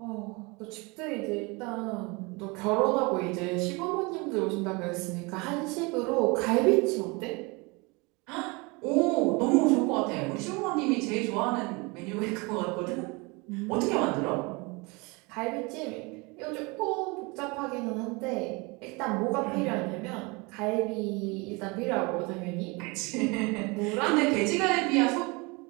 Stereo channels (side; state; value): left; quieter; 27.2 dB